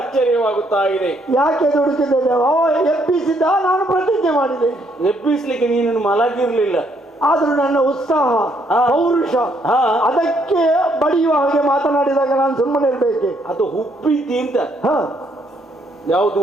ಇದೆ. ಯಾಕೆ ದುಡುಕಿದ್ದೇನೆ? ಎಬ್ಬಿಸಿದ್ದ, ನಾನು ಪ್ರತಿಜ್ಞೆ ಮಾಡಿದೆ. ಎಬ್ಬಿಸ್ಲಿಕ್ಕೆ ನೀನು ಮಲಗಿರ್ಲಿಲ್ಲ, ಆದ್ರೂ ನನ್ನ ಉತ್ಸಾಹ ಪೌರುಷ ಅದಕ್ಕೆ ಬಡಿಯುವ ಹಾಗೆ ಮಾತನಾಡಿದಾಗ ನಾನು ಸುಮ್ಮನೆ ಇರ್ಬೇಕೆ? ಅದು ಹುಬ್ಬಿದ್ದಿ ಅಂತ. ಯಾವುದು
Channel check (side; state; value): both; normal; correlation 0.70